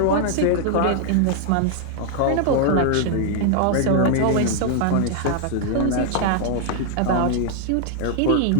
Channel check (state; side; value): different; both; correlation -0.01